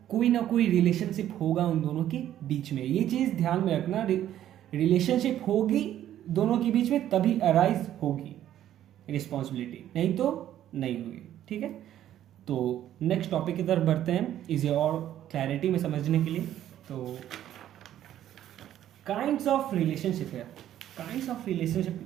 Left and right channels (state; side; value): quieter; left; 11.8 dB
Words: कोई ना कोई रिलेशनशिप होगा उन दोनों के बीच में। ये चीज ध्यान में रखना, रिलेशनशिप होगी दोनों के बीच में तभी अराइज होगी रिस्पॉन्सिबिलिटी, नहीं तो नहीं होगी। ठीक है, तो नेक्स्ट टॉपिक की तरफ बढ़ते हैं इसे और क्लैरिटी में समझने के लिए। तो काइंड्स ऑफ रिलेशनशिप है। काइंड्स ऑफ